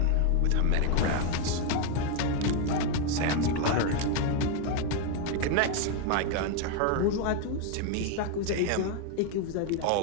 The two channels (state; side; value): different; both; correlation 0.01